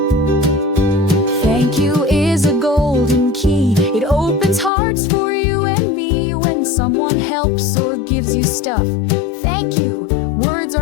Thank you is a golden key. It opens hearts for you and me. When someone helps or gives you stuff, thank you, words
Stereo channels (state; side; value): drops out; right; at 4.7 s